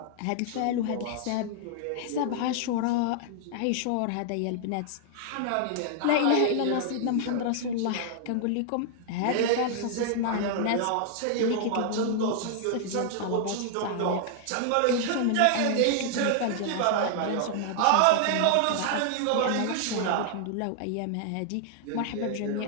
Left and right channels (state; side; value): different; both; correlation 0.00